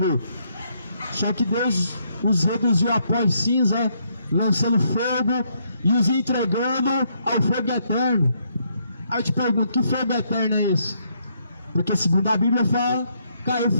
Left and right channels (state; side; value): inverted; both; correlation -0.73